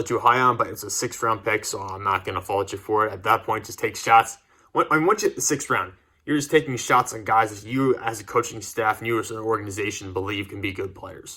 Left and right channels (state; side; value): identical; both; correlation 1.00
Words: too high on, but it's a 6th round pick, so I'm not going to fault you for it. At that point, just take shots. Once you hit the 6th round, you're just taking shots on guys that you, as a coaching staff, and you as an organization, believe can be good